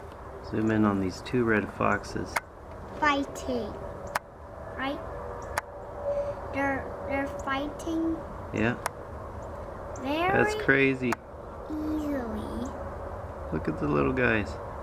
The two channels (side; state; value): both; identical; correlation 1.00